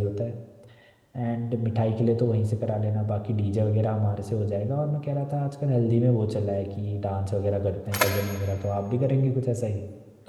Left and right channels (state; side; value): identical; both; correlation 1.00